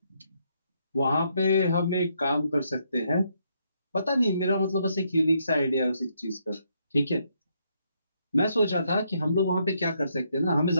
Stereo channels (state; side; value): inverted; both; correlation -0.75